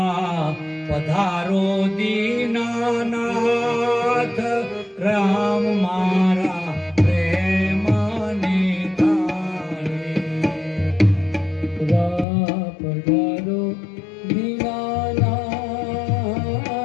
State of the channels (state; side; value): drops out; right; at 12.2 s